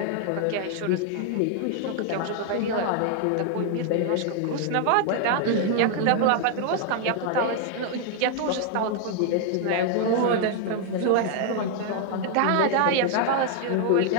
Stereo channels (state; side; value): different; both; correlation 0.00